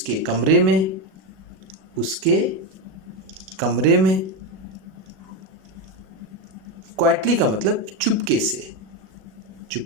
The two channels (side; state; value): left; late; 37 ms